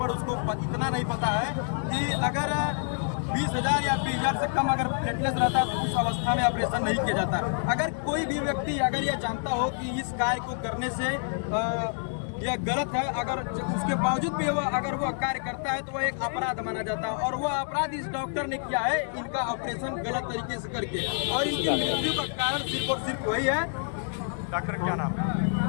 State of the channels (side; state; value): right; silent; digital silence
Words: उसको इतना नहीं पता है कि अगर 20,000 या 20,000 से कम अगर प्लेटलेट्स रहता है तो उस अवस्था में ऑपरेशन नहीं किया जाता। अगर कोई भी व्यक्ति अगर यह जानता हो कि इस कार्य को करने से यह गलत है, अगर उसके बावजूद भी अगर वो कार्य करता है तो वह एक अपराध माना जाता है, और वह अपराध इस डॉक्टर ने किया है, इनका ऑपरेशन गलत तरीके से करके, और इनकी मृत्यु का कारण सिर्फ और सिर्फ वही है। डॉक्टर क्या नाम